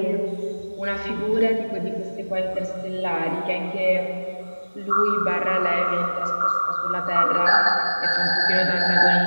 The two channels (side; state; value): both; inverted; correlation -1.00